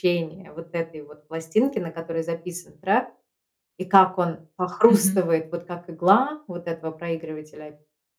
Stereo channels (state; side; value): identical; both; correlation 1.00